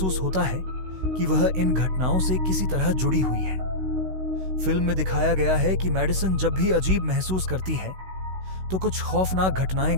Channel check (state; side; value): late; left; 16 ms